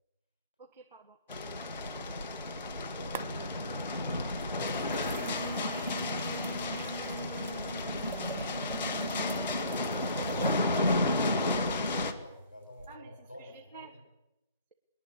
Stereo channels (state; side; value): inverted; both; correlation -0.52